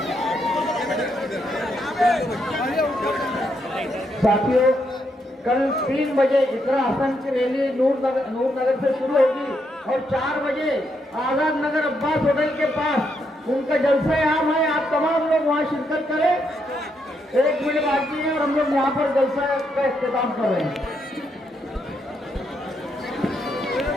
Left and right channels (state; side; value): normal; both; correlation 0.78